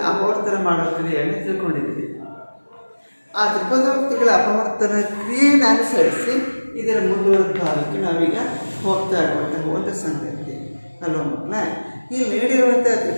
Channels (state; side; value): inverted; both; correlation -1.00